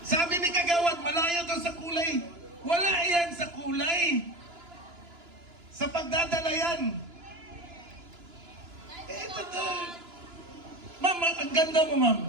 Sabi ni kagawad, malayo daw sa kulay. Wala yan sa kulay. Sa pagdadala yan. Ito to. Ma'am, ang ganda mo, ma'am.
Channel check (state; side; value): late; left; 2.9 ms